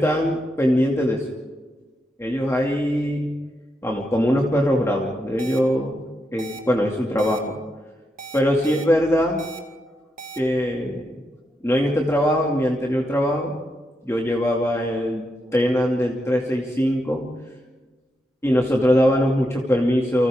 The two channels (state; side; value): normal; both; correlation 0.83